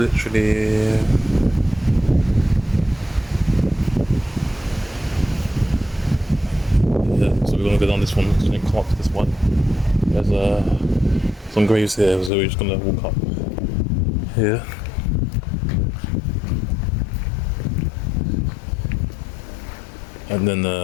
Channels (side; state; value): right; drops out; at 12.3 s